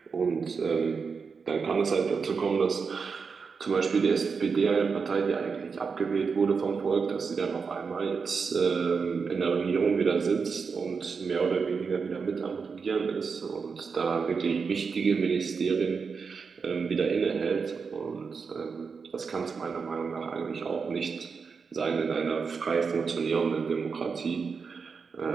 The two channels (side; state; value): left; quieter; 5.4 dB